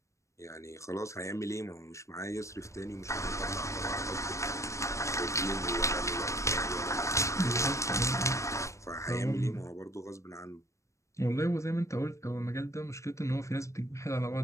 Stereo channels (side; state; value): right; late; 0.15 ms